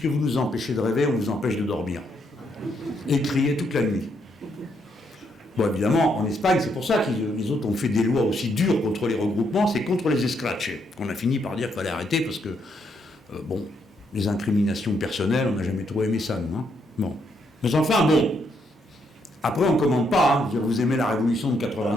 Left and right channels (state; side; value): normal; both; correlation 0.75